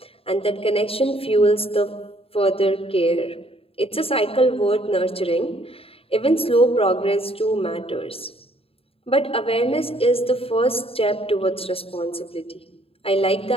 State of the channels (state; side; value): late; right; 0.27 ms